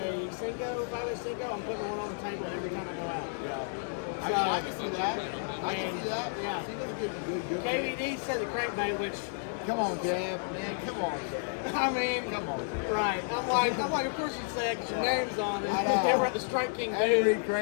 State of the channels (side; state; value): right; silent; digital silence